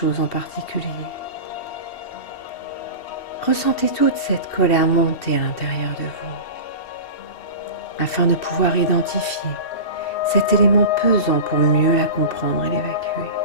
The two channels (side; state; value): right; late; 2.8 ms